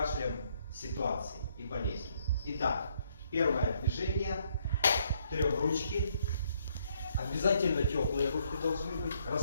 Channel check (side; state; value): both; inverted; correlation -0.70